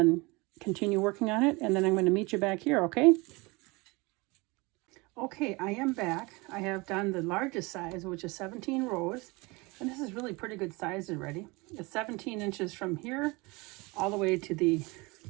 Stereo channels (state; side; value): quieter; left; 25.3 dB